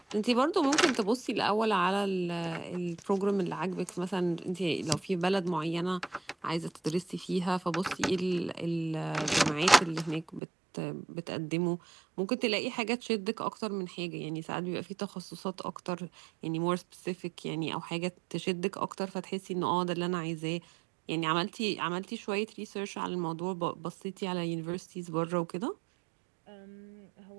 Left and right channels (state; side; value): drops out; left; at 10.4 s